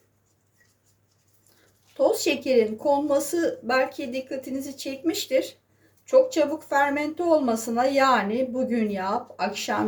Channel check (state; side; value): identical; both; correlation 1.00